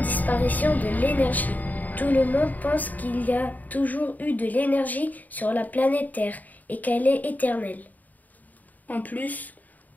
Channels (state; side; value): late; right; 0.080 ms